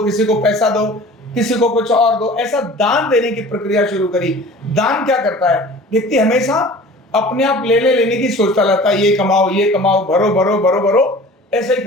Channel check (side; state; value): both; normal; correlation 0.43